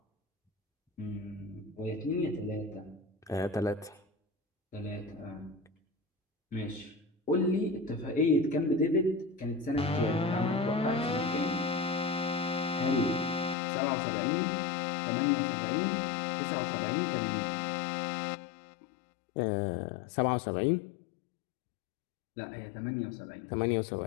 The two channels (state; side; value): drops out; right; at 13.6 s